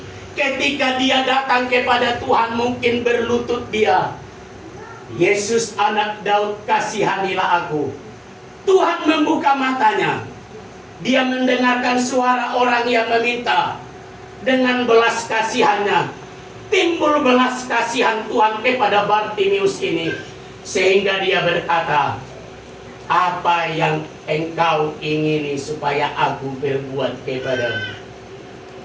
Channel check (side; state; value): both; identical; correlation 1.00